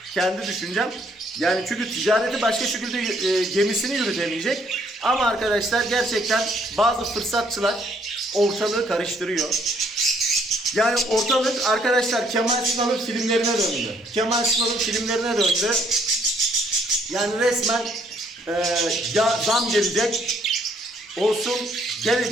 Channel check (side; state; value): both; normal; correlation 0.66